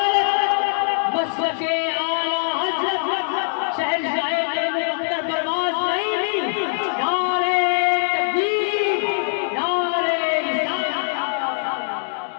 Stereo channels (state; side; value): silent; right; digital silence